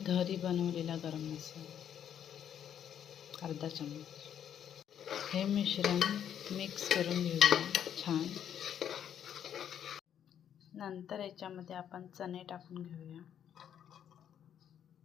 घरी बनवलेला गरम मसाला अर्धा चम्मच। हे मिश्रण मिक्स करून घेऊया छान। नंतर याच्यामध्ये आपण चणे टाकून घेऊया।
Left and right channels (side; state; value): right; quieter; 9.4 dB